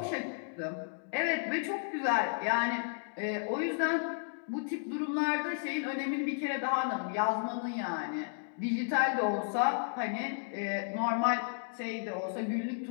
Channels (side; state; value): right; silent; digital silence